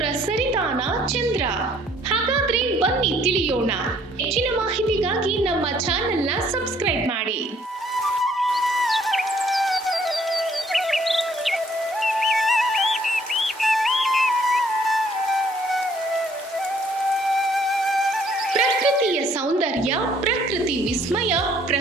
ಸರಿತಾನ ಚಂದ್ರ. ಹಾಗಾದ್ರೆ ಬನ್ನಿ ತಿಳಿಯೋಣ. ಹೆಚ್ಚಿನ ಮಾಹಿತಿಗಾಗಿ ನಮ್ಮ ಚಾನೆಲ್ನ ಸಬ್ಸ್ಕ್ರೈಬ್ ಮಾಡಿ. ಪ್ರಕೃತಿಯ ಸೌಂದರ್ಯ, ಪ್ರಕೃತಿ ವಿಸ್ಮಯ,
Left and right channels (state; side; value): normal; both; correlation 0.62